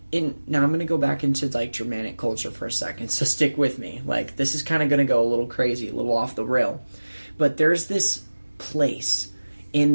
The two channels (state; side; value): inverted; both; correlation -1.00